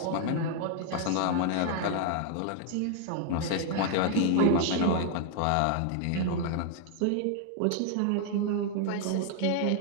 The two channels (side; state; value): both; different; correlation 0.00